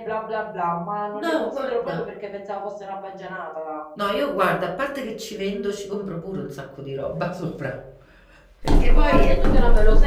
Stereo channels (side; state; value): both; identical; correlation 1.00